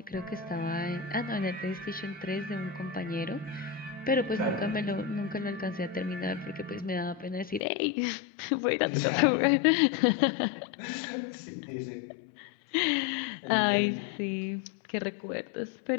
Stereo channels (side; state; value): right; drops out; at 7.6 s